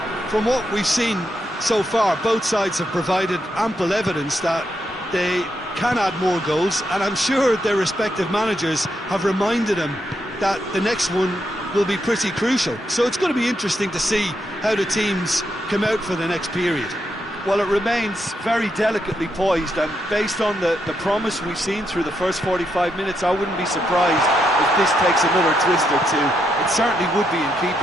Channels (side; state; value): both; normal; correlation 0.80